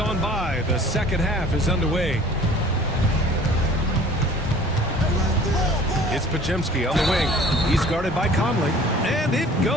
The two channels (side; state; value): both; normal; correlation 0.49